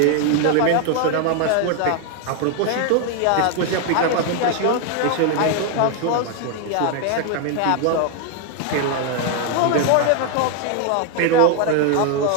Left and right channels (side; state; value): both; different; correlation 0.00